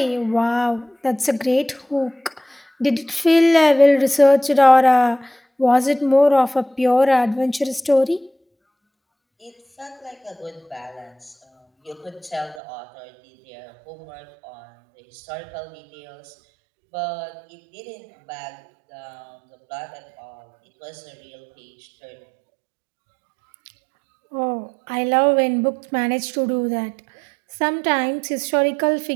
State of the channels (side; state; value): left; drops out; at 12.6 s